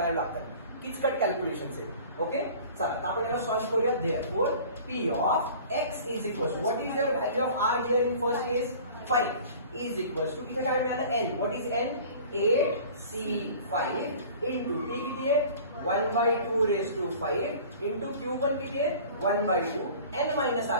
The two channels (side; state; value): both; inverted; correlation -0.44